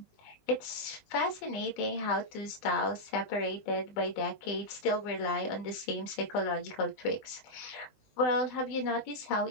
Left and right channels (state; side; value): late; right; 20 ms